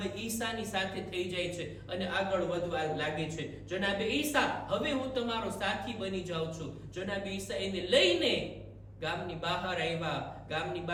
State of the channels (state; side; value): identical; both; correlation 1.00